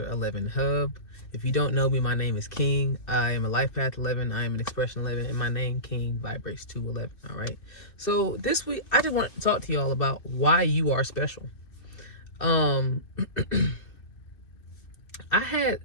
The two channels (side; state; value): right; late; 2.4 ms